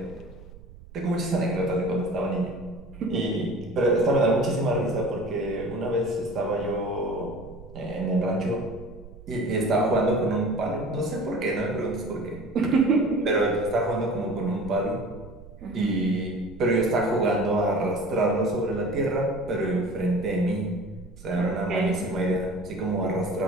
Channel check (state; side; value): noise; right; rumble, 18 dB below the sound